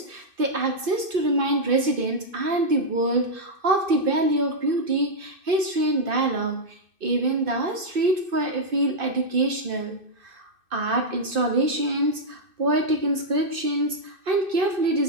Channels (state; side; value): late; left; 2.6 ms